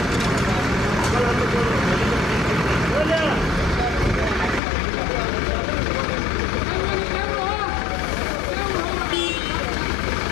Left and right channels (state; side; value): drops out; right; at 4.6 s